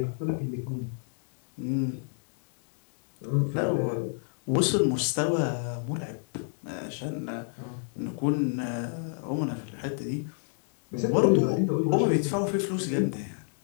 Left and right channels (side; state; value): right; silent; 58 dB below the other